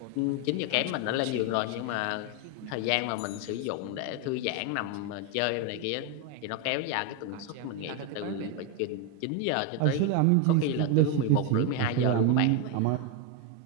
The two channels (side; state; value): both; different; correlation 0.02